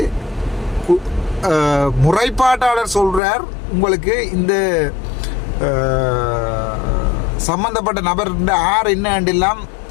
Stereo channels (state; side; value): drops out; right; at 3.2 s